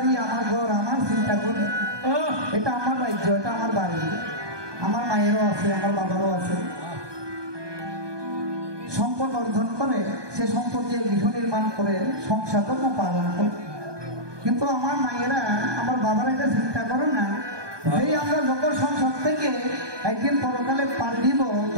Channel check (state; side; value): late; left; 1.2 ms